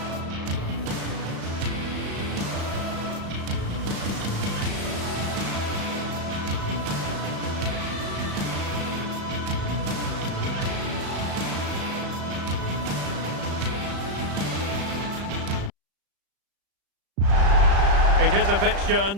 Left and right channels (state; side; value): late; left; 35 ms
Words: It is a fixture